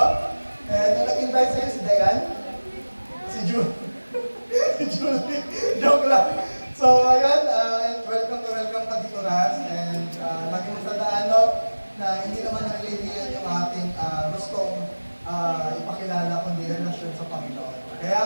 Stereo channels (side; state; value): both; inverted; correlation -1.00